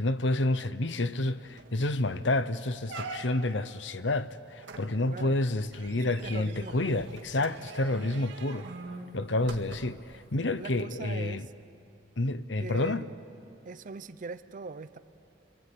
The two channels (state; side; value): normal; both; correlation 0.44